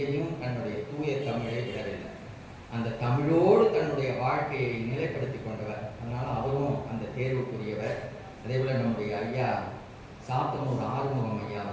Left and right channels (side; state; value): both; identical; correlation 1.00